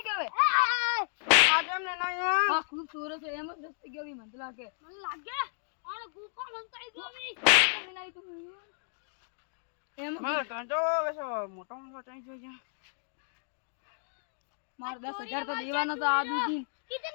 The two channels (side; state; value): right; silent; digital silence